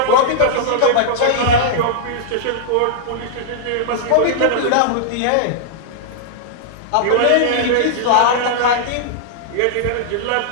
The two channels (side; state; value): both; different; correlation -0.01